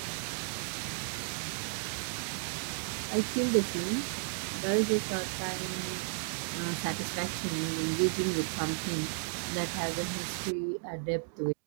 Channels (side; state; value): left; silent; digital silence